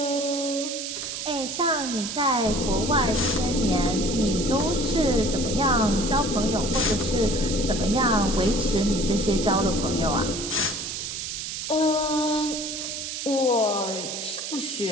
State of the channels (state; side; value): noise; right; hiss, 5 dB below the sound